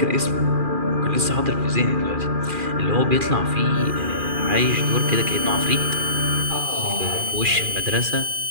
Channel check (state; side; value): late; left; 2.4 ms